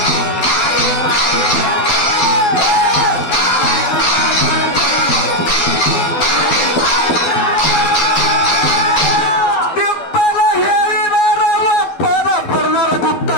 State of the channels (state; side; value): late; right; 12 ms